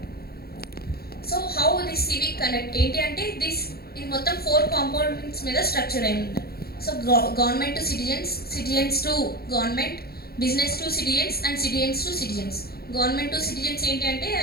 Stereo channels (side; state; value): right; late; 0.45 ms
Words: so how this civic connect ఏంటి అంటే ఇది మొత్తం 4 కాంపోనెంట్స్ మీద స్ట్రక్చర్ అయింది. So government to citizens, citizens to government, business to citizens and citizens to citizens. Government to citizens ఏంటి అంటే